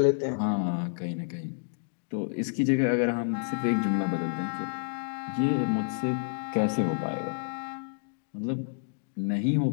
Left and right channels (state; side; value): silent; right; digital silence